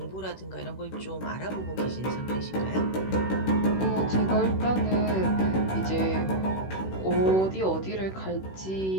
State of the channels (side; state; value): right; late; 16 ms